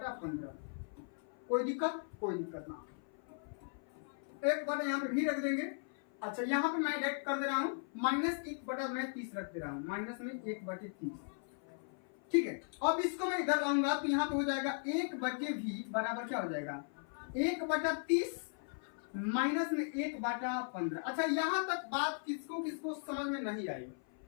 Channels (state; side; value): silent; right; 53 dB below the other